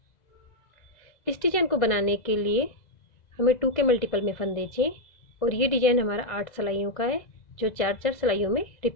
इस डिजाइन को बनाने के लिए हमें 2 के मल्टीपल में फंदे चाहिए और ये डिजाइन हमारा 8 सिलाइयों का है, जो 4-4 सिलाइयों में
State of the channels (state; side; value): late; right; 1.5 ms